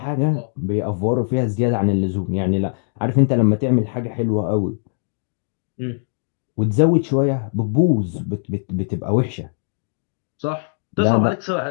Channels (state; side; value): silent; right; digital silence